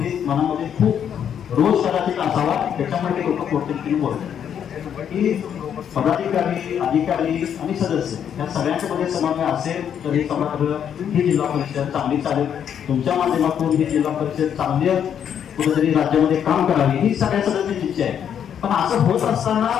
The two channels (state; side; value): quieter; right; 8.7 dB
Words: मनामध्ये खूप रोज कदाचित असावा, त्याच्यामध्ये लोक पोटतिडकीने बोलतात की पदाधिकारी, अधिकारी आणि सदस्य या सगळ्यांच्या मध्ये समन्वय असेल तर हे सभागृह ही जिल्हा परिषद चांगली चालेल। तुमच्या माध्यमातून ही जिल्हा परिषद चांगली कुठेतरी राज्यामध्ये काम करावी ही सगळ्या सदस्यांची इच्छा आहे। पण असं होत असताना